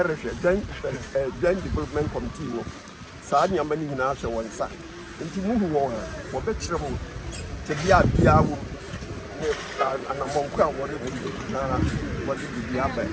joint development committee. Sanya many in our one side. And to move on, for better to be a beer and a monk, what did you have?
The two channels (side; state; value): both; identical; correlation 1.00